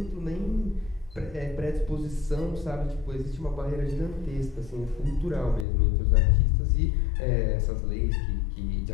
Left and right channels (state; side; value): drops out; right; at 5.7 s